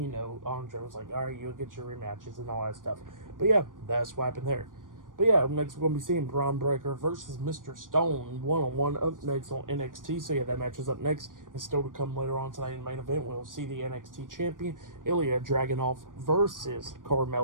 was like, all right, you'll get your rematches and all that stuff. But yeah, that's what happened there. But yeah, up next we're going to be seeing Braun Breaker versus Mr. Stone one-on-one up next on NXT. So yeah, that match is up next. And still to come later on tonight in the main event, we'll see the NXT champion, Ilja Dragunov versus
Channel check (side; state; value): left; late; 0.89 ms